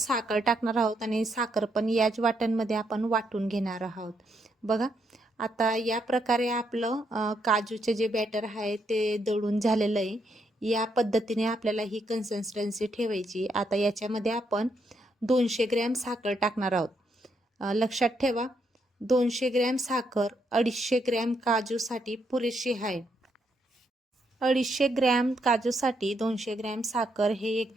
टाकणार आहोत आणि साखर पण याच वाट्यांमध्ये आपण वाटून घेणार आहोत. बघा, आता या प्रकारे आपलं काजूचे जे बॅटर आहे ते दळून झालेलं आहे. या पद्धतीने आपल्याला ही कन्सिस्टन्सी ठेवायची. आता याच्यामध्ये आपण 200 ग्रॅम साखर टाकणार आहोत. लक्षात ठेवा, 200 ग्रॅम साखर 250 ग्रॅम काजूसाठी पुरेशी आहे. 250 ग्रॅम काजूसाठी 200 ग्रॅम साखर हे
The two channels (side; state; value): both; normal; correlation 0.77